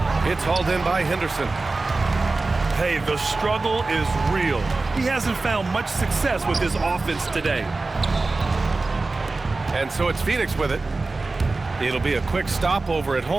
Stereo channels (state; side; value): quieter; left; 3.5 dB